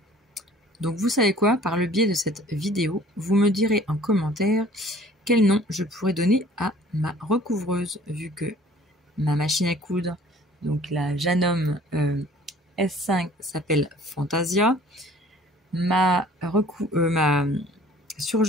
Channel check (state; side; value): normal; both; correlation 0.52